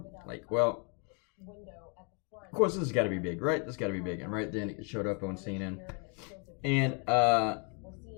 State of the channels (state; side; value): quieter; right; 35.9 dB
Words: like, well, of course this has got to be big, right? This has got to be big, and right then it showed up on CNN, and